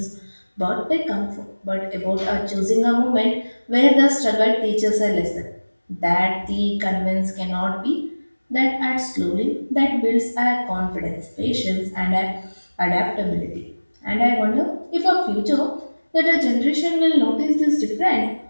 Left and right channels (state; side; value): inverted; both; correlation -1.00